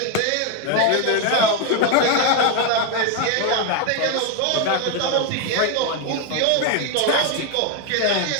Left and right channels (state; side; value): different; both; correlation 0.02